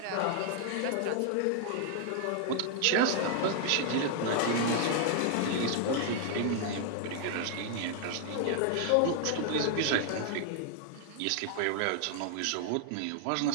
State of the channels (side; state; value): both; different; correlation 0.00